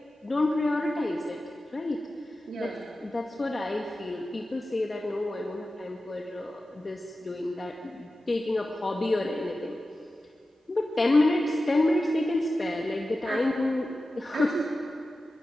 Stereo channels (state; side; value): normal; both; correlation 0.94